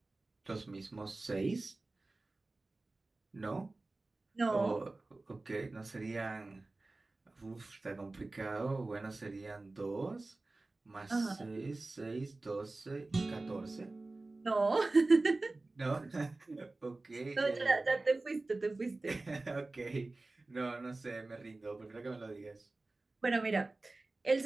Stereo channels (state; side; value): quieter; left; 3.2 dB